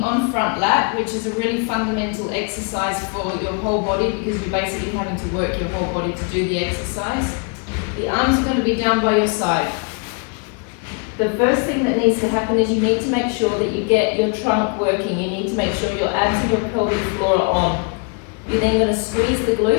on-front lat, which is a really fundamental exercise for your whole body because you're basically having to work your whole body to do the exercise. The arms are going to be down by your side. The first thing that needs to happen is you need to make sure that you get your trunk working. You need to make sure your abs and your pelvic floor are on. You're then going to squeeze the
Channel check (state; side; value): quieter; right; 36.3 dB